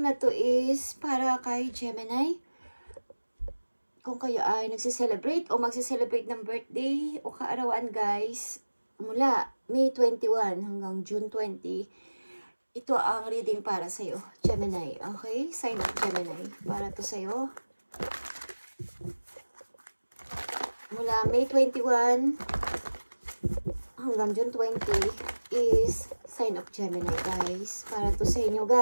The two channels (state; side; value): inverted; both; correlation -1.00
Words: na to is para kay Gemini. Kung kayo ay nagsiselebrate o magsiselebrate ng birthday o kaarawan guys, mula May 21 hanggang June 20, ito ang reading para sa'yo, Gemini. Okay? Sign of Gemini. Para to sa'yo. Mula May 21 hanggang June 20 is sign of Gemini guys. Para to sa inyo